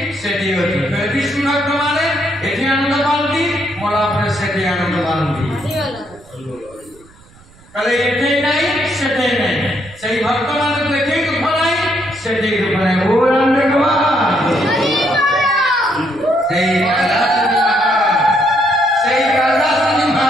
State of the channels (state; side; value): noise; right; rumble, 26 dB below the sound